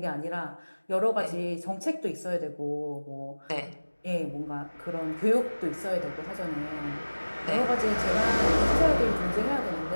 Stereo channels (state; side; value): inverted; both; correlation -1.00